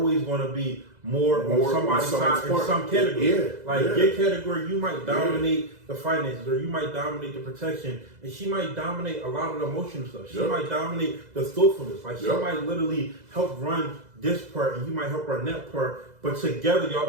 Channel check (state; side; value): late; left; 2.0 ms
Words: going to be more on somebody's side in some category. Your category, you might dominate the finances, or you might dominate the protection, and she might dominate a lot of the emotional stuff. She might dominate the thoughtfulness. Like she might literally help run this part, and you might help run that part. But together, y'all